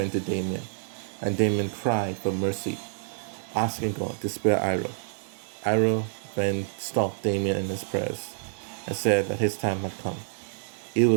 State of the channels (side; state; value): left; silent; 60 dB below the other